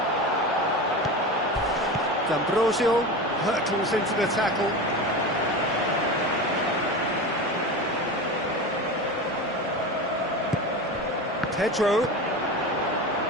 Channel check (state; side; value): normal; both; correlation 0.27